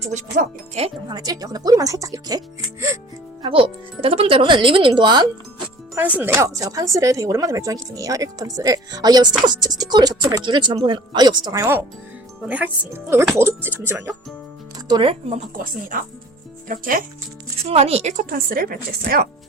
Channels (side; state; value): both; normal; correlation 0.46